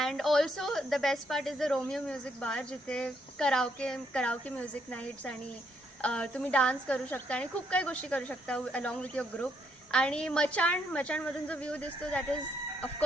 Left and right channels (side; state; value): both; normal; correlation 0.73